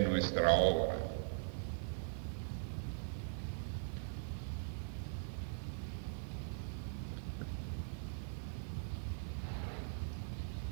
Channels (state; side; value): silent; left; 50 dB below the other